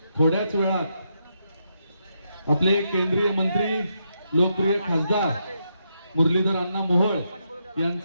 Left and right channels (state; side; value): inverted; both; correlation -0.81